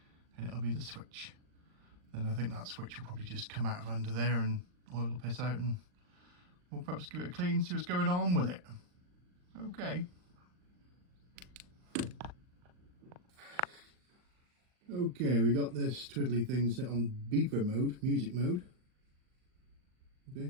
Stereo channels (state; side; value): late; left; 39 ms